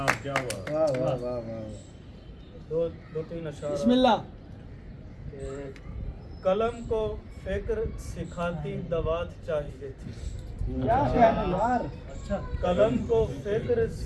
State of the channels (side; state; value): both; identical; correlation 1.00